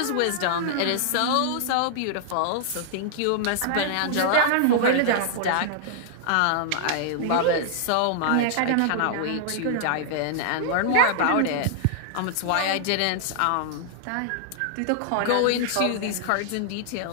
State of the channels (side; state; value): both; different; correlation -0.01